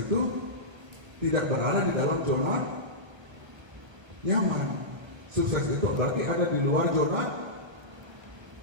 tidak berada di dalam zona nyaman. Sukses itu berarti ada di luar zona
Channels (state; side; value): late; left; 1.5 ms